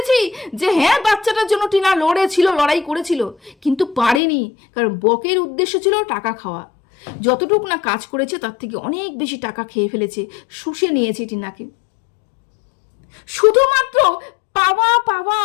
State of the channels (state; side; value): drops out; right; at 4.2 s